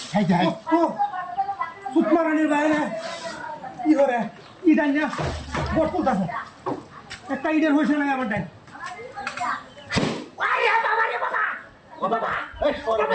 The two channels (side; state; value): both; identical; correlation 1.00